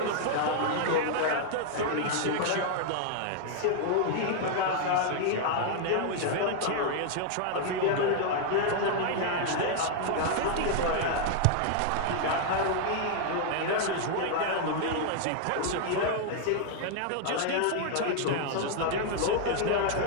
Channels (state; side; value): different; both; correlation 0.00